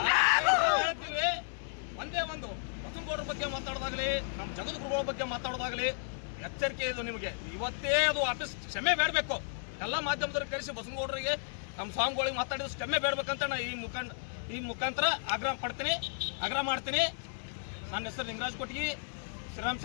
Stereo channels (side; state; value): right; silent; digital silence